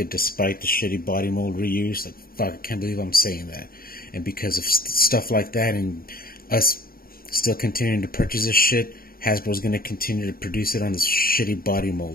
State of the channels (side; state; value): right; late; 0.43 ms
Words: despite the shitty body mold reuse. Like, fuck, I can't believe I'm saying that. And because of stuff like that and us still continuing to purchase this shit, Hasbro's going to continue to produce it on this shitty body